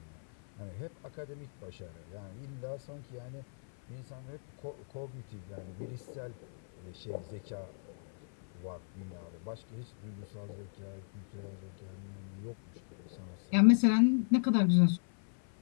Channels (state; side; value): silent; right; 54 dB below the other